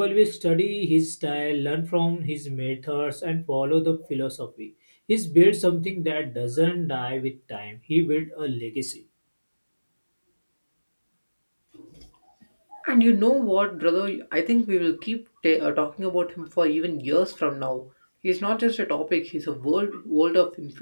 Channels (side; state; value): both; inverted; correlation -1.00